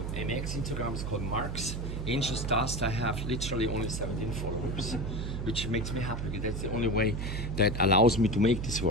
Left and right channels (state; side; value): noise; right; hum, 3 dB below the sound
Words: MX Instagram is called Mark's Anxious Dust. I have literally only 17 followers, which makes me happy because that's the only way that allows me to make this